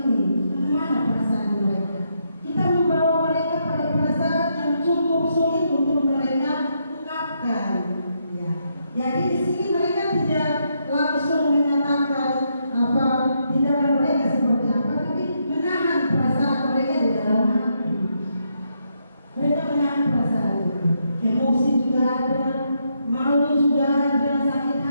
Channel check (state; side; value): inverted; both; correlation -0.78